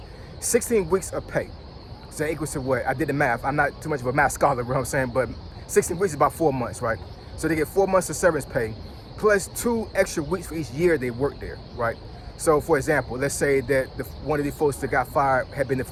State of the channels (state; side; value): identical; both; correlation 1.00